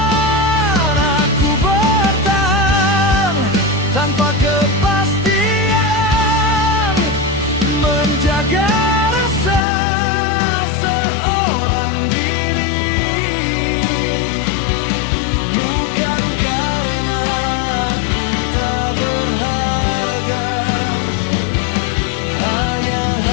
Aku bertahan tanpa kepastian,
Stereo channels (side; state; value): right; drops out; at 9.6 s